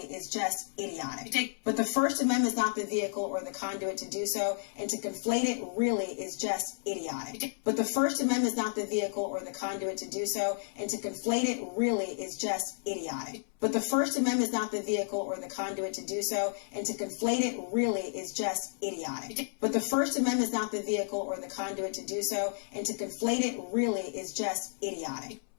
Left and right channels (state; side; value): silent; right; 56 dB below the other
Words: is just idiotic. But the First Amendment is not the vehicle or the conduit to do so, and to conflate it really is just idiotic. But the First Amendment is not the vehicle or the conduit to do so, and to conflate it really is just idiotic. But the First Amendment is not the vehicle or the conduit to do so, and to conflate it really is just idiotic. But the First Amendment is not the vehicle or the conduit to do so, and to conflate it really is just idiotic.